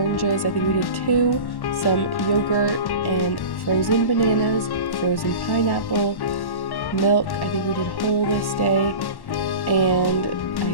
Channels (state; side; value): late; right; 1.1 ms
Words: I think we did 2, some yogurt and frozen bananas, frozen pineapple, milk, I think we did whole this day, and